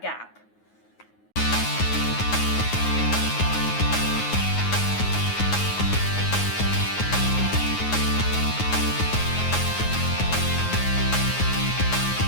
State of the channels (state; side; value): late; right; 9.5 ms